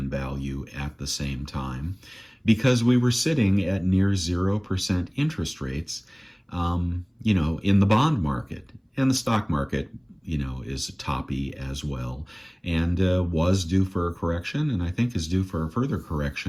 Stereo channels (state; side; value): identical; both; correlation 1.00